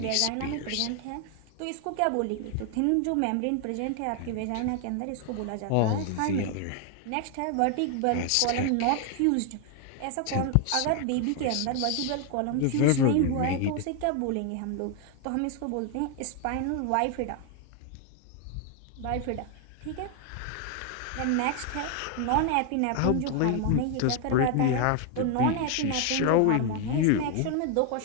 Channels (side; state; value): both; different; correlation 0.00